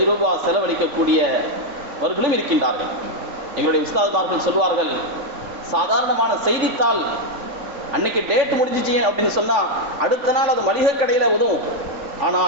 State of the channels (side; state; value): left; late; 3.5 ms